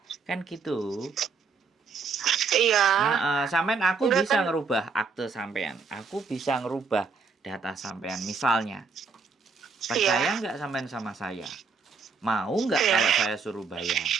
Kan gitu. Iya. Sampean aku Enggak bisa kan. ngerubah akte sampean. Aku bisa ngerubah data sampean. Misalnya, Iya. percaya nggak sampean sama saya? Mau nggak Iya. kalau saya suruh bayar?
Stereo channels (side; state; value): left; quieter; 4.9 dB